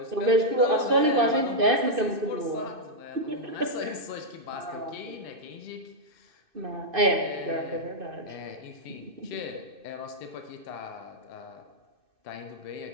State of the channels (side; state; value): left; late; 2.6 ms